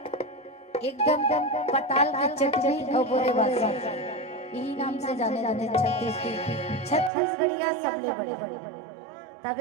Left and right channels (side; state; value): left; drops out; at 7.1 s